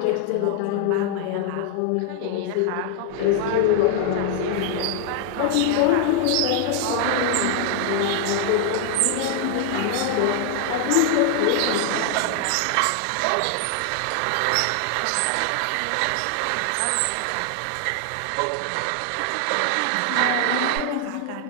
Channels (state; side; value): different; both; correlation 0.00